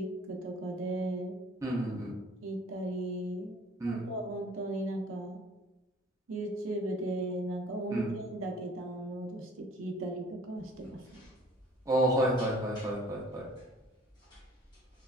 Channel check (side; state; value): both; normal; correlation 0.52